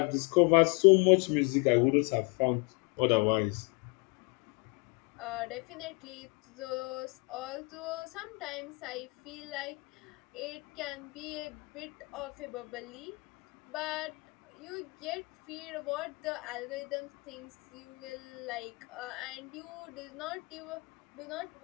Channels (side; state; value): right; quieter; 29.6 dB